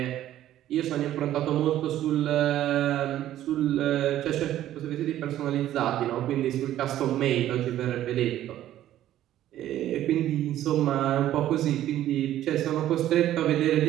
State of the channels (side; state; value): left; quieter; 12.8 dB